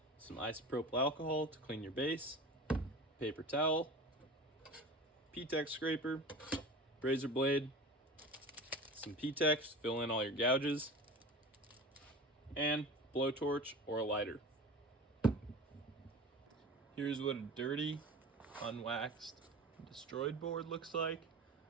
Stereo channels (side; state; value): both; normal; correlation 0.34